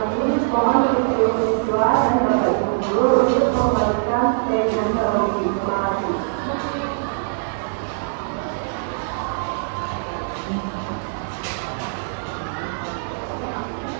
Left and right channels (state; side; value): silent; left; digital silence